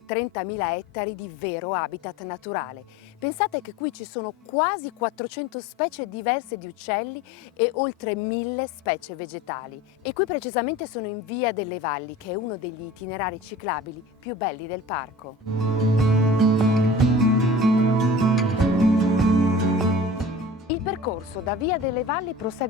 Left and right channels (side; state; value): both; normal; correlation 0.40